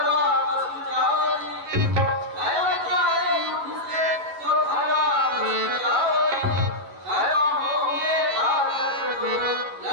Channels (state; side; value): late; left; 11 ms